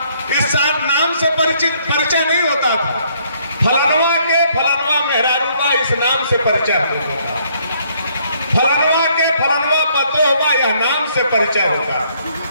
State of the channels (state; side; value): inverted; both; correlation -0.67